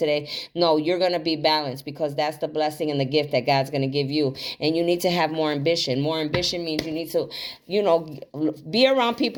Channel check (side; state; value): both; identical; correlation 1.00